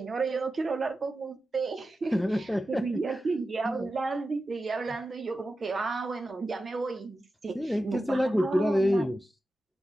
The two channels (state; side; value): normal; both; correlation 0.92